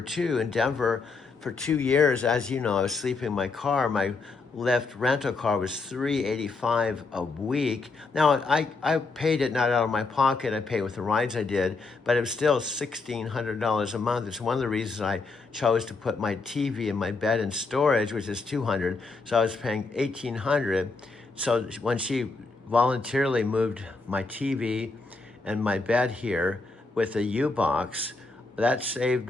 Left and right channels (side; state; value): right; quieter; 3.9 dB